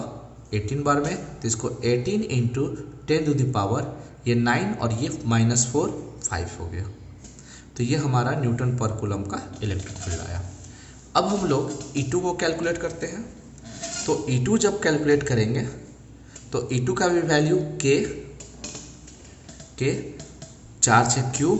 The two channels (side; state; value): both; identical; correlation 1.00